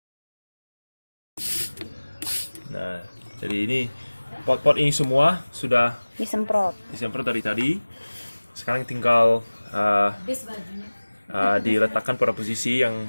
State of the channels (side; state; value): both; inverted; correlation -1.00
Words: Nah, jadi ini pot-pot ini semua sudah Disemprot. disemprot dari tadi. Sekarang tinggal diletakkan pada posisi yang